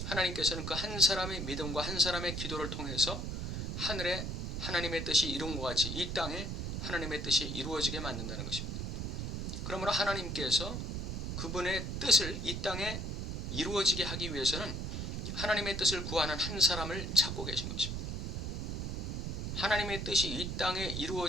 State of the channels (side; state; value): right; noise; rumble, 3 dB below the sound